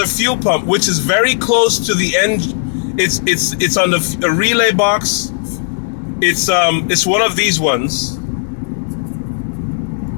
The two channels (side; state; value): right; silent; 70 dB below the other